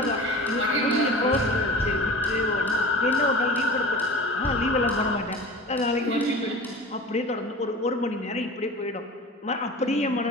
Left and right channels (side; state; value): both; normal; correlation 0.37